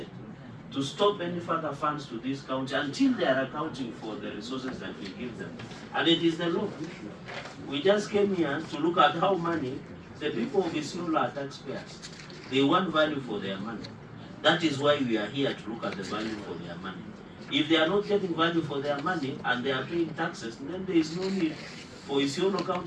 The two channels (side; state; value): both; identical; correlation 1.00